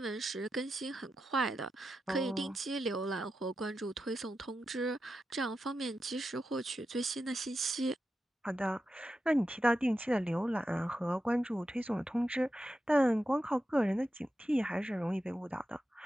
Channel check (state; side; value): normal; both; correlation 0.89